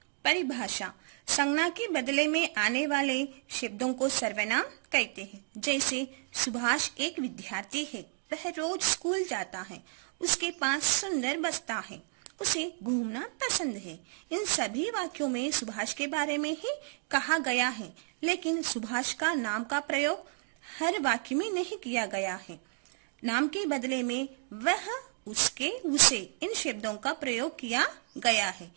परिभाषा: संज्ञा के बदले में आने वाले शब्दों को सर्वनाम कहते हैं। जैसे सुभाष एक विद्यार्थी है, वह रोज स्कूल जाता है, उसके पास सुंदर बस्ता है, उसे घूमना पसंद है। इन सभी वाक्यों में सुभाष के बारे में ही कहा गया है, लेकिन सुभाष का नाम का प्रयोग हर वाक्य में नहीं किया गया है। नाम के बदले में वह, उसके, उसे इन शब्दों का प्रयोग किया गया है।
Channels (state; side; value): silent; left; 57 dB below the other